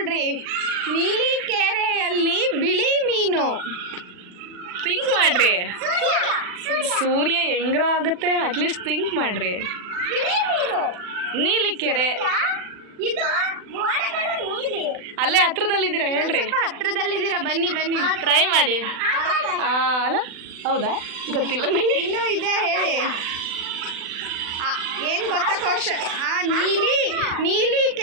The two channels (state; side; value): late; left; 40 ms